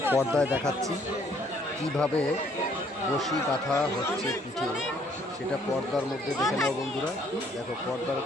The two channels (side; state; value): both; normal; correlation 0.64